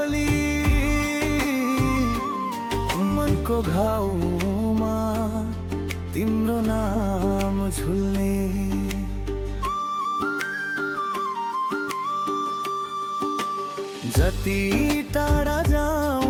मनको घाउमा तिम्रो नाम झुल्ने जति टाढा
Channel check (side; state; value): both; identical; correlation 1.00